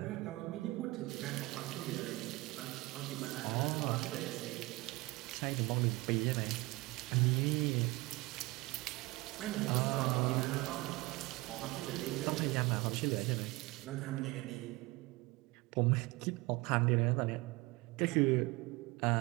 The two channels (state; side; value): quieter; left; 22.2 dB